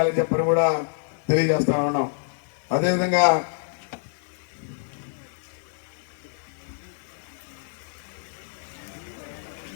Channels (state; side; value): silent; right; digital silence